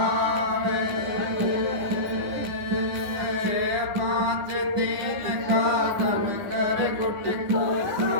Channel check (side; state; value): left; late; 10 ms